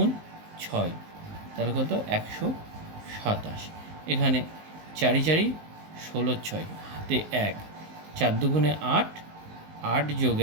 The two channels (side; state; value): left; late; 19 ms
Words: 6, তাহলে কত? 127। এখানে 4 4 16, 6 হাতে 1, 4 দুগুণে 8, 8 যোগ